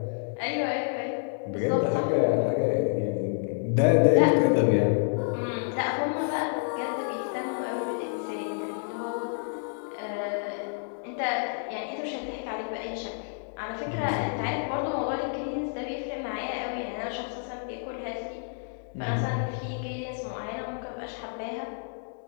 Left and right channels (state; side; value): silent; right; digital silence